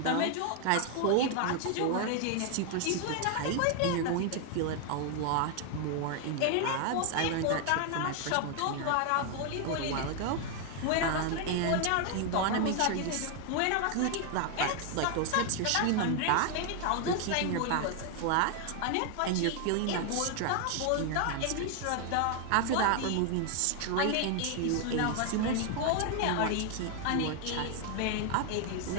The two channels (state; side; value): different; both; correlation 0.00